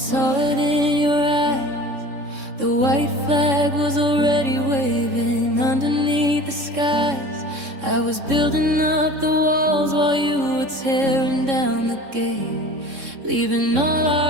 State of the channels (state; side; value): late; left; 3.6 ms